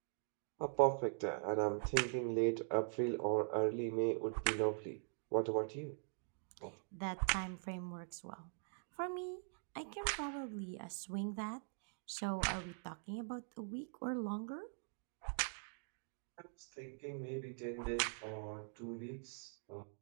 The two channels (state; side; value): silent; left; digital silence